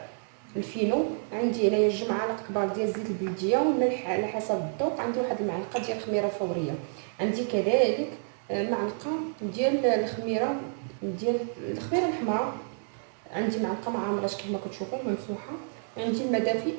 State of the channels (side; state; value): left; silent; digital silence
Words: الفينو، عندي هنايا 2 معالق كبار ديال زيت البلديه والملح على حسب الذوق، عندي واحد المعلقه ديال الخميره فوريه، عندي كذلك معلقه ديال الخميره الحمراء، عندي معلقه ما عامراش كما كتشوفوا ممسوحه، عندي الماء دافي